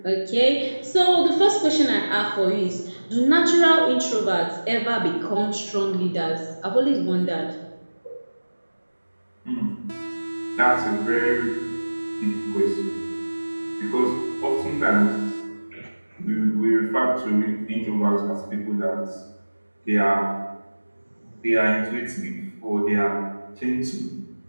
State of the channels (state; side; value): inverted; both; correlation -1.00